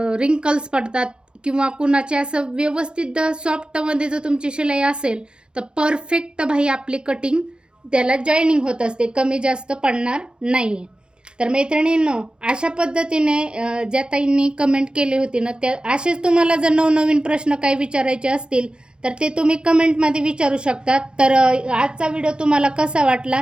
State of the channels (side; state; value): left; late; 0.050 ms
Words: रिंकल्स पडतात, किंवा कुणाचे असं व्यवस्थित सॉफ्टमध्ये जर तुमची शिलाई असेल तर परफेक्ट बाही आपली कटिंग त्याला जॉईनिंग होत असते, कमी जास्त पडणार नाही. तर मैत्रिणींनो, अशा पद्धतीने ज्या ताईंनी कमेंट केली होती ना त्या असेच तुम्हाला जर नवनवीन प्रश्न काही विचारायचे असतील तर ते तुम्ही कमेंटमध्ये विचारू शकता. तर आजचा व्हिडिओ तुम्हाला कसा वाटला,